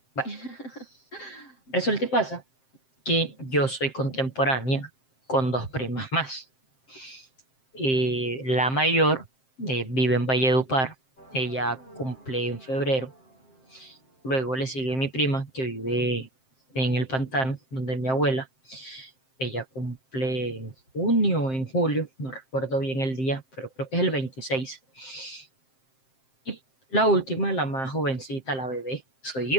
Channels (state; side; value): late; right; 7.6 ms